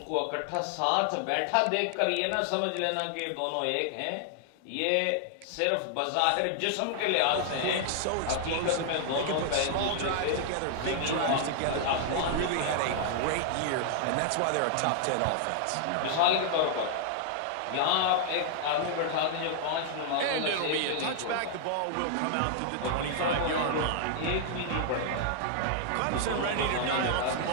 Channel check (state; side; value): different; both; correlation 0.00